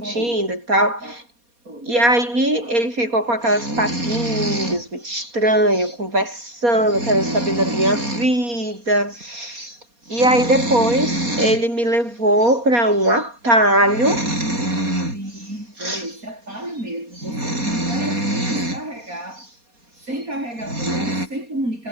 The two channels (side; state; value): left; late; 4.2 ms